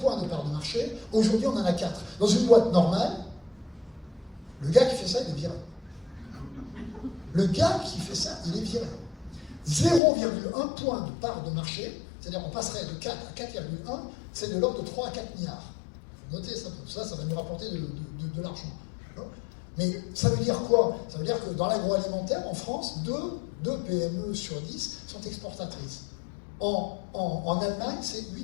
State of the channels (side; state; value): right; drops out; at 10.0 s